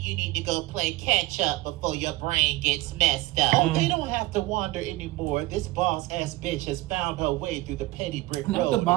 need to go play catch up before your brain gets messed up. Oh, they don't have to wander anymore. This boss-ass bitch has found her way through the petty brick road. Not the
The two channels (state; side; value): quieter; left; 18.9 dB